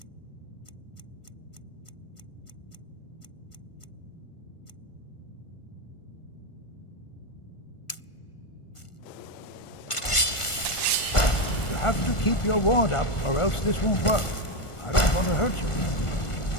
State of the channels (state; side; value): late; right; 1.4 ms